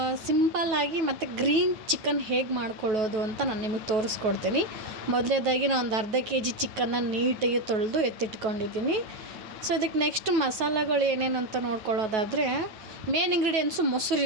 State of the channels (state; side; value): late; left; 9.3 ms